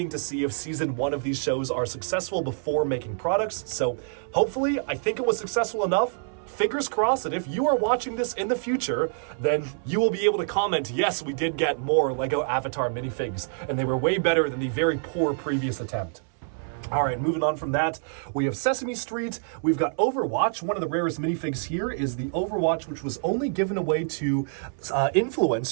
to see if Season 1 of these shows are successful before making products, so hopefully, I think it was successful enough. Fingers crossed that if you are watching this in the future, then you will be able to comment, yes, we did get more LEGO Avatar minifigs, and they were way better than the very poor previous attempt. All right, moving on from that, we have Sesame Street, we've got Overwatch. One of the rarest minifigs here is the Overwatch, which was only given away to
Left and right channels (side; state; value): left; silent; 60 dB below the other